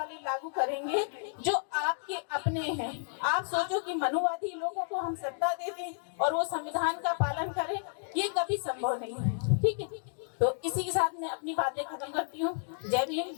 लागू करेंगे जो आपके अपने हैं। आप सोचो कि मनुवादी लोगों को हम सत्ता दे दें और वो संविधान का पालन करें, ये कभी संभव नहीं है। ठीक है। तो इसी के साथ मैं अपनी बातें खत्म करती हूँ। जय भीम,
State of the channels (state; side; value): silent; right; digital silence